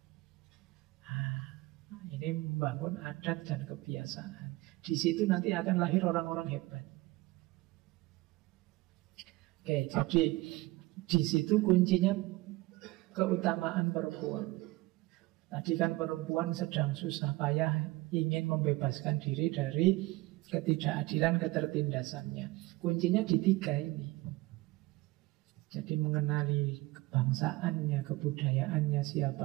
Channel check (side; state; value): left; quieter; 20.2 dB